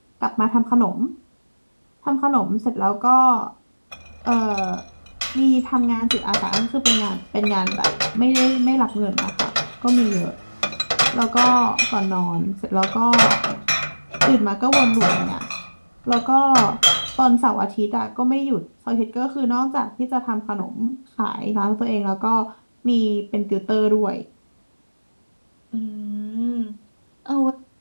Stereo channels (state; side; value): inverted; both; correlation -1.00